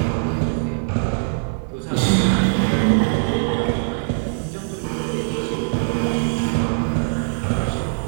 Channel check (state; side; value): silent; left; 57 dB below the other